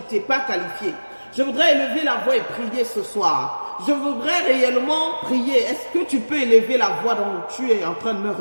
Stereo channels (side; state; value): both; inverted; correlation -1.00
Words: pas qualifié, je voudrais élever la voix et prier ce soir. Je voudrais réellement prier. Est-ce que tu peux élever la voix dont tu es en train de me